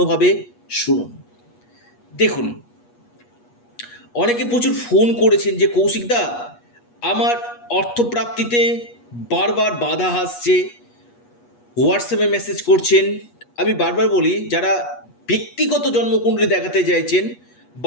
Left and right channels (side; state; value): right; late; 8.3 ms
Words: শুনুন। দেখুন, অনেকে প্রচুর ফোন করেছেন যে কৌশিকদা, আমার অর্থপ্রাপ্তিতে বারবার বাধা আসছে, হোয়াটসঅ্যাপে মেসেজ করছেন। আমি বারবার বলি, যারা ব্যক্তিগত জন্মকুণ্ডলী দেখাতে চাইছেন